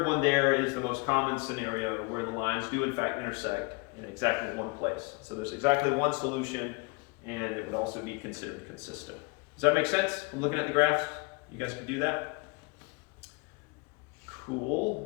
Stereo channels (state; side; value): quieter; right; 29.5 dB